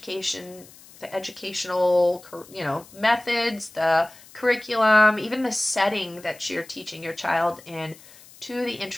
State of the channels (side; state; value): left; noise; hiss, 22 dB below the sound